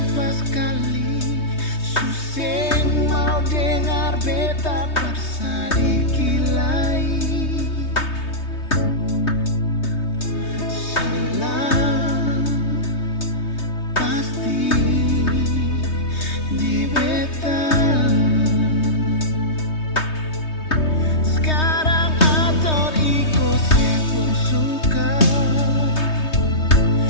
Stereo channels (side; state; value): right; late; 3.2 ms